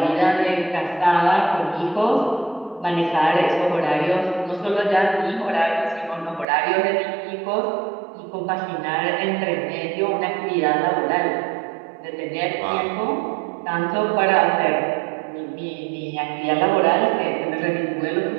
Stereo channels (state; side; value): drops out; left; at 6.5 s